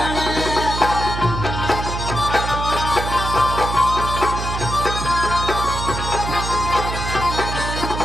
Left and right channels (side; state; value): right; noise; hum, 4 dB below the sound